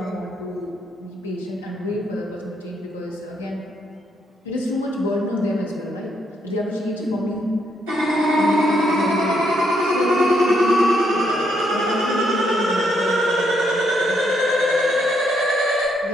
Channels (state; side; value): normal; both; correlation 0.75